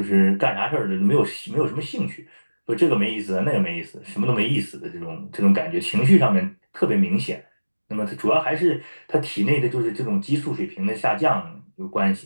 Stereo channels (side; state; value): both; inverted; correlation -1.00